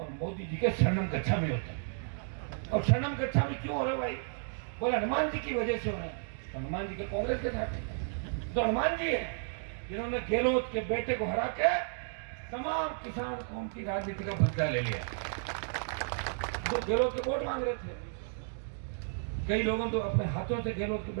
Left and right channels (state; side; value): silent; left; digital silence